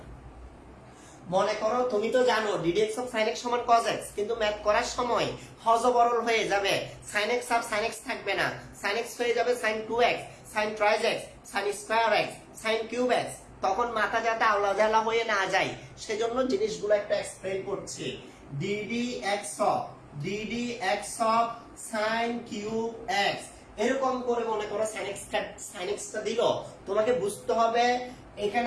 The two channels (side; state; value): both; identical; correlation 1.00